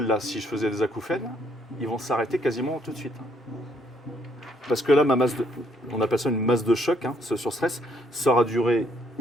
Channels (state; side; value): normal; both; correlation 0.68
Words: là, si je faisais des acouphènes, ils vont s'arrêter quasiment tout de suite. Parce que là, on appelle ça une masse de choc, hein, ce surstress, ça aura duré